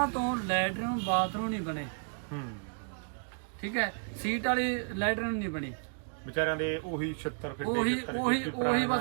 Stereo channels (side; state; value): left; silent; 56 dB below the other